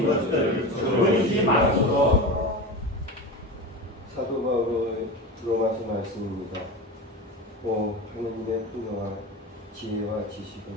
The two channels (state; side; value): normal; both; correlation 0.26